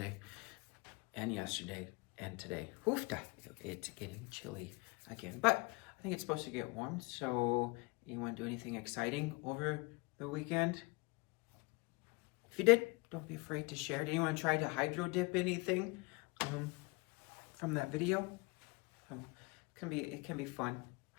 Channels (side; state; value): right; quieter; 27.8 dB